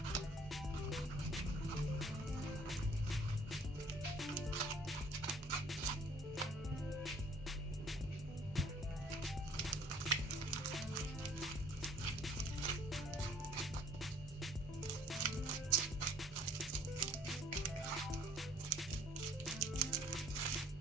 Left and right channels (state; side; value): normal; both; correlation 0.57